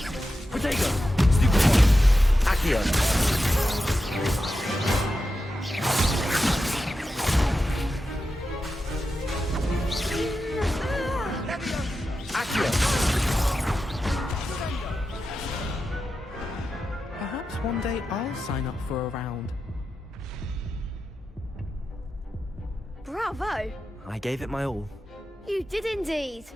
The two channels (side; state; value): both; normal; correlation 0.90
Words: Protego. Accio. Accio. Perhaps one day I'll sign up for a round. Bravo! I gave it my all. You did indeed.